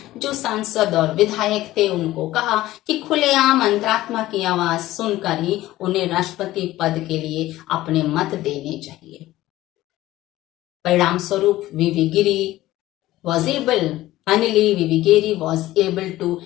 जो सांसद और विधायक थे उनको कहा कि खुलेआम अंतरात्मा की आवाज सुनकर ही उन्हें राष्ट्रपति पद के लिए अपने मत देने चाहिए. परिणाम स्वरूप V.V. Giri was able Finally, V.V. Giri was able to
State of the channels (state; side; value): quieter; right; 16.1 dB